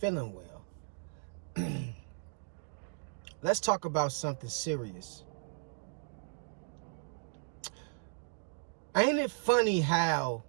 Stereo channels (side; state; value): left; silent; digital silence